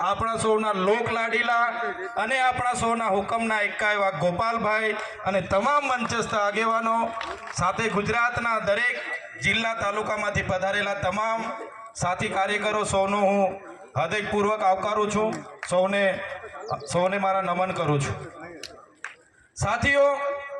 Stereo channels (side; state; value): both; identical; correlation 1.00